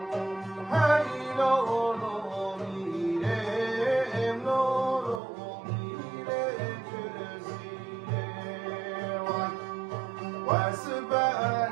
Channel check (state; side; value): drops out; left; at 5.2 s